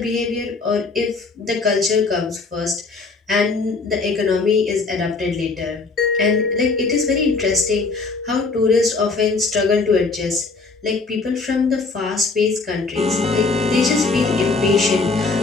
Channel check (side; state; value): right; quieter; 4.0 dB